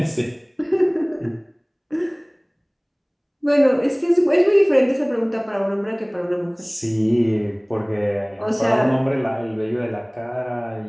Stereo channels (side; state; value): both; identical; correlation 1.00